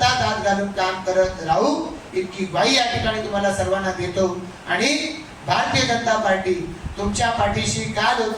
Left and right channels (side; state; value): both; identical; correlation 1.00